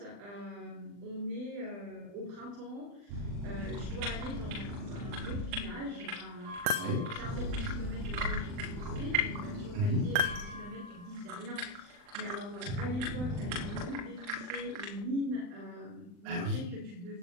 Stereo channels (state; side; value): late; left; 40 ms